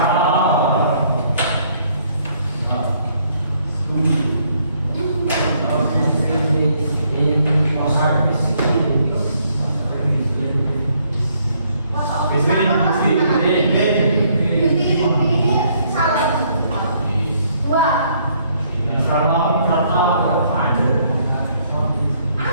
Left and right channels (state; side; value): inverted; both; correlation -0.68